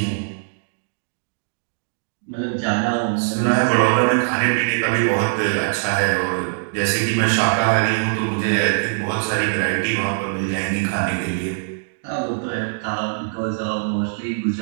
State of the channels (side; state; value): left; silent; digital silence